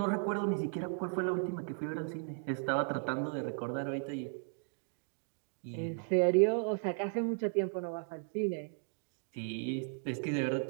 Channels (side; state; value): left; silent; 54 dB below the other